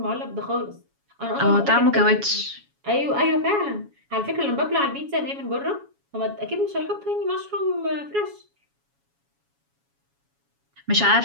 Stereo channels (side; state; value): left; late; 7.2 ms